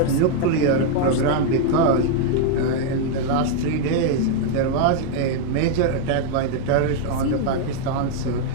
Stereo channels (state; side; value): different; both; correlation 0.00